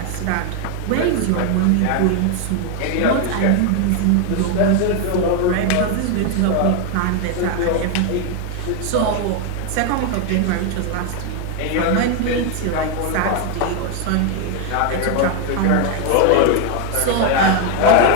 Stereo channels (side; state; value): both; different; correlation 0.01